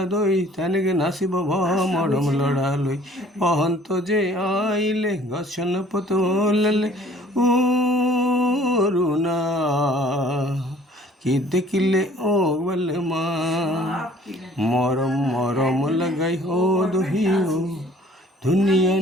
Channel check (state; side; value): normal; both; correlation 0.54